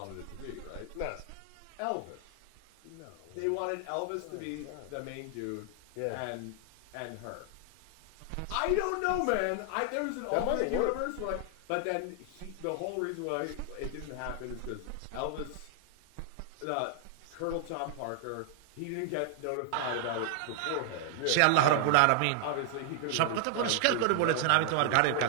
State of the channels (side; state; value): both; different; correlation 0.00